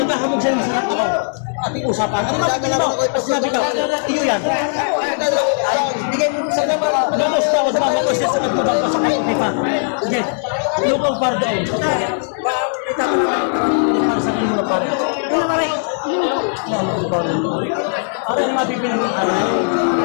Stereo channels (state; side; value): silent; right; digital silence